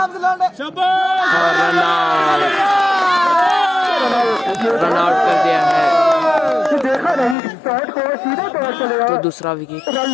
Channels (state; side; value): drops out; right; at 7.4 s